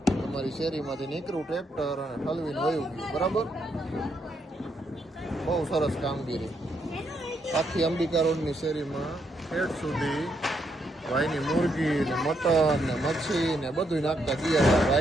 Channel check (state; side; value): normal; both; correlation 0.77